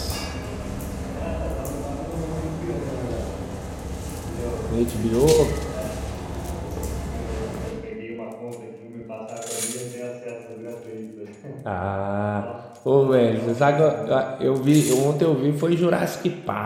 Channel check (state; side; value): identical; both; correlation 1.00